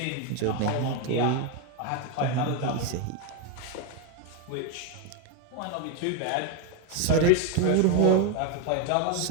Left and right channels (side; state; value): both; different; correlation 0.02